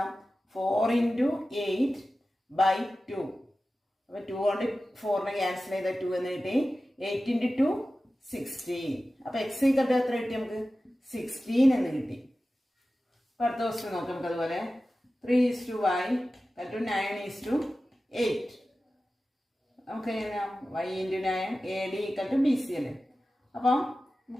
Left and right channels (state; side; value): normal; both; correlation 0.95